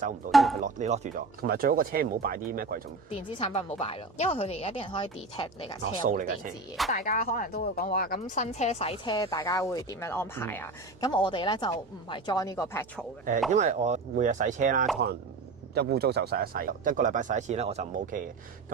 唔到，因為你落住咗。同埋最好個車唔好擺啲咩貴重電子產品，唔好擺咯，因為佢哋而家啲人可以 detect 你架車有冇電子嘢。大家可能都會講話咁新車洗車，大家會點樣安排啊？咁我哋咧就唔係 join 呢個 petrol 嘅。因為我每日洗車啦，可能一污糟就洗一洗，一個禮拜洗一次咧，我就唔 OK 嘅。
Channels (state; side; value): quieter; left; 3.7 dB